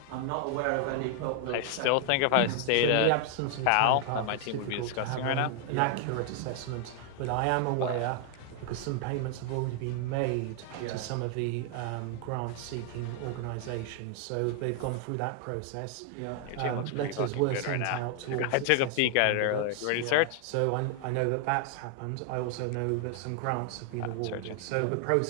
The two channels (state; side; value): different; both; correlation 0.00